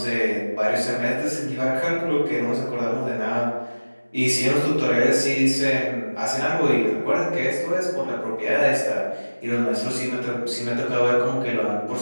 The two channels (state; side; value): inverted; both; correlation -1.00